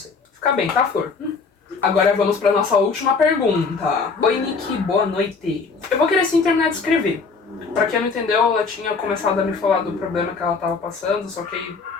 Fica bem, tá, Flor? Agora vamos pra nossa última pergunta. Oi, Nick, boa noite. Eu vou querer sim terminar de escrever. Pra quem não entendeu, ela tinha começado a me falar do problema que ela tava passando, só que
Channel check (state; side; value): quieter; right; 4.8 dB